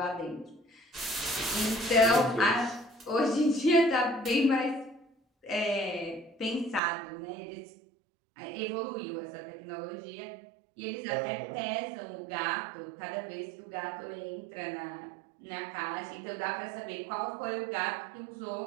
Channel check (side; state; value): left; drops out; at 6.8 s